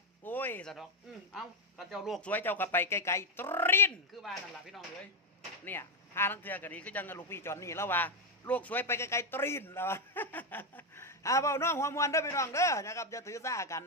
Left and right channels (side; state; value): both; normal; correlation 0.05